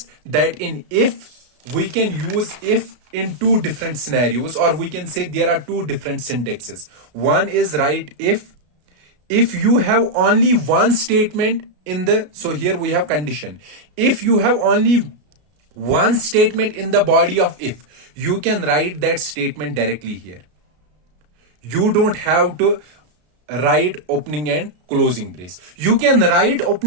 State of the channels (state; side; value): late; left; 33 ms